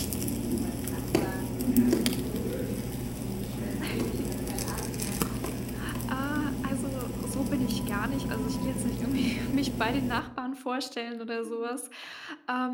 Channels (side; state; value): both; identical; correlation 1.00